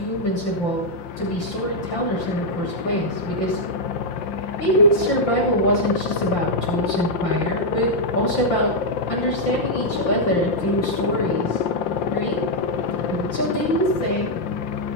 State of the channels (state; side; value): late; right; 5.8 ms